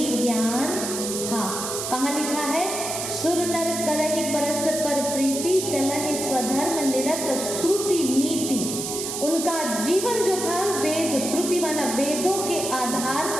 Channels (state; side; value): noise; right; hiss, 4 dB below the sound